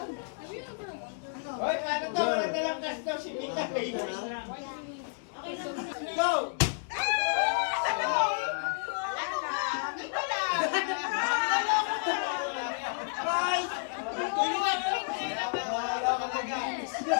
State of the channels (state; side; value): silent; right; 57 dB below the other